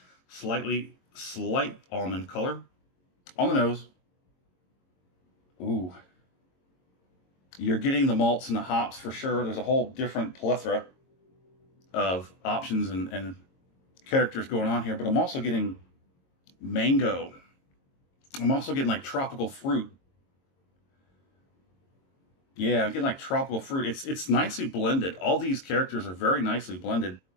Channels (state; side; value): late; right; 22 ms